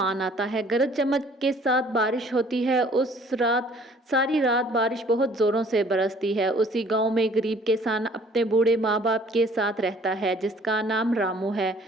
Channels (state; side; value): normal; both; correlation 0.55